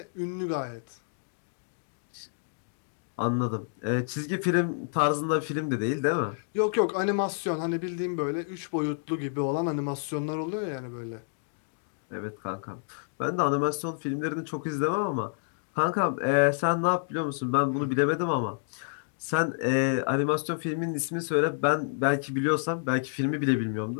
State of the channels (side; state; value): right; silent; digital silence